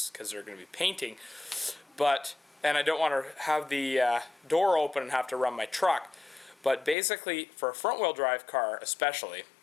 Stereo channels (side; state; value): right; drops out; at 7.0 s